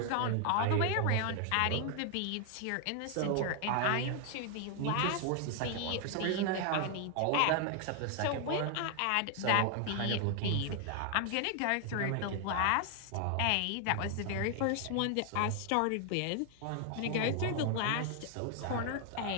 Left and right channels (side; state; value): both; different; correlation 0.00